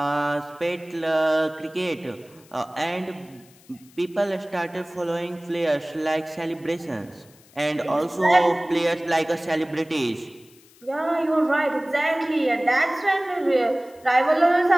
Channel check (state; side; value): noise; left; hiss, 27 dB below the sound